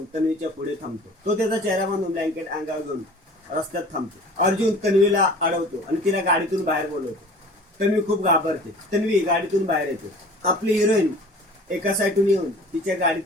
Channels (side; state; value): both; normal; correlation 0.45